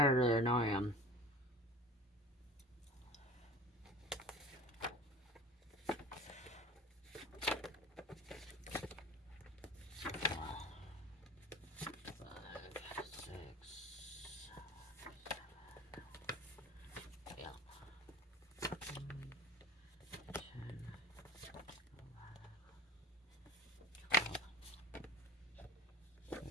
earlier, now I am.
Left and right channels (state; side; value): normal; both; correlation 0.39